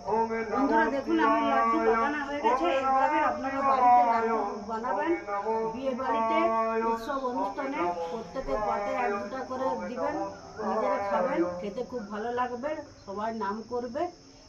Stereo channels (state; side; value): identical; both; correlation 1.00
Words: বন্ধুরা দেখুন, আমার লাড্ডু বানানো হয়ে গেছে। এইভাবে আপনারা বাড়িতে লাড্ডু বানাবেন, বিয়ে বাড়িতে, উৎসব অনুষ্ঠানে প্রত্যেকের পাতে এক দুটা করে দিবেন, নিজেরা খাবেন, খেতে খুব ভালো লাগবে, সবাই নাম করবে।